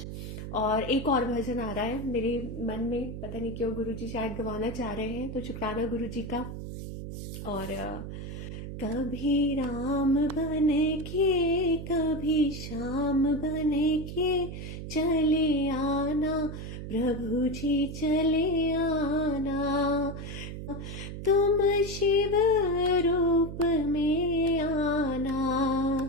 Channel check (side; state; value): right; noise; hum, 8 dB below the sound